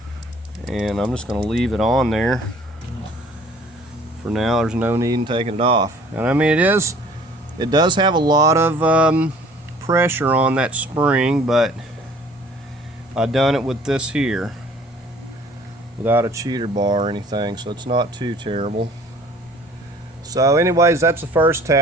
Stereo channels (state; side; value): normal; both; correlation 0.53